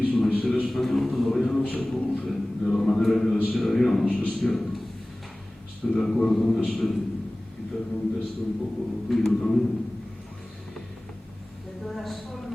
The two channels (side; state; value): both; normal; correlation 0.98